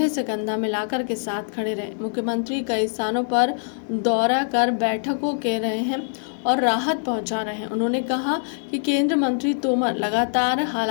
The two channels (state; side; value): silent; right; 62 dB below the other